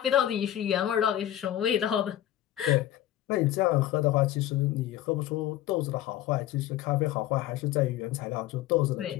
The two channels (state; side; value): quieter; right; 12.9 dB